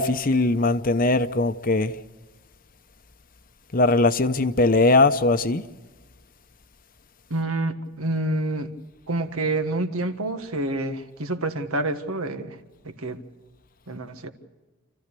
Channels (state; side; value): normal; both; correlation 0.13